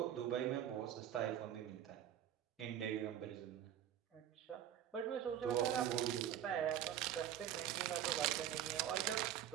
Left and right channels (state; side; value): quieter; left; 10.7 dB